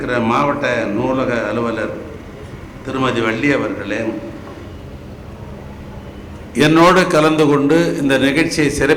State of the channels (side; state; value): both; identical; correlation 1.00